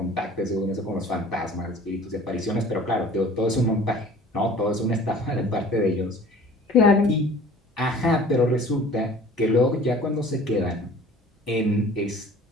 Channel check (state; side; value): normal; both; correlation 0.47